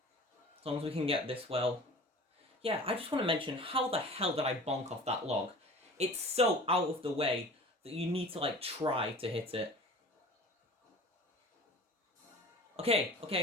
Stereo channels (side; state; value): both; normal; correlation 0.41